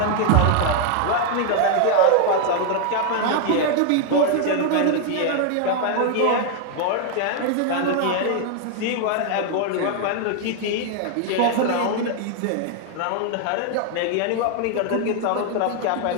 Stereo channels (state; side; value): different; both; correlation 0.00